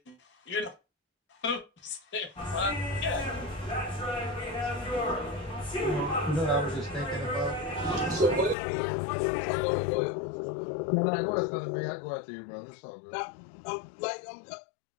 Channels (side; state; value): right; drops out; at 8.6 s